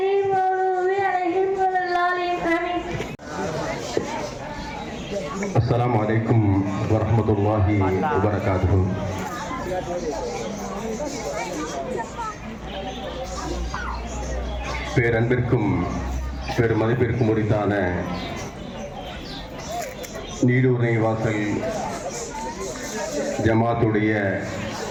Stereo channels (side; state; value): both; identical; correlation 1.00